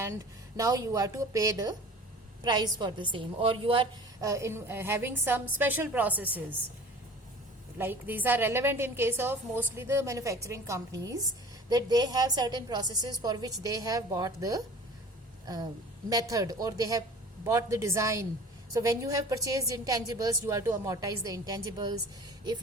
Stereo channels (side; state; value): both; normal; correlation 0.43